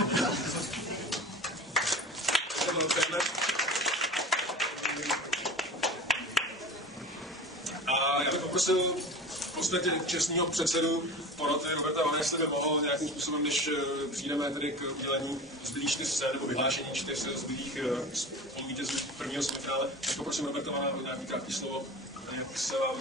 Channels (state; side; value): normal; both; correlation 0.34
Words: A já bych poprosil v podstatě čestního předsedu poroty Roberta Vana, jestli by mohl nějakým způsobem, než přijdeme tedy k udělení zbylých 4 cen nebo vyhlášení 4 zbylých spoluvítězů prvního semifinále, tak poprosím Roberta Vana o nějaký krátký slovo, jak se vám